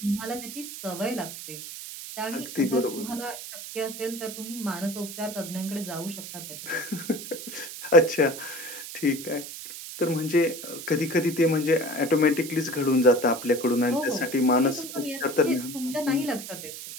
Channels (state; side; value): noise; right; hiss, 10 dB below the sound